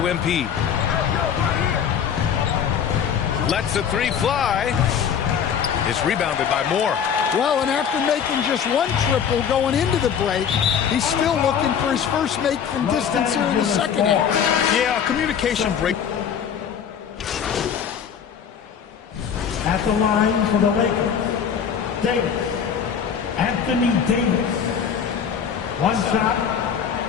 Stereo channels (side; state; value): right; quieter; 7.7 dB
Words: MP. Lets the three fly. It's rebounded by Moore. Well, and after making just one triple going into the break, he's still looking for his first make from distance here in the second half. Yeah, communication break. At the line for the Lakers, Davis. Anthony Davis. One shot.